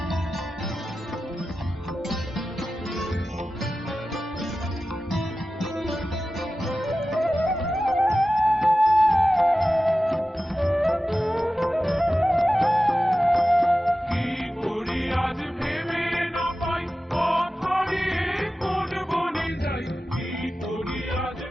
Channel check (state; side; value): normal; both; correlation 0.94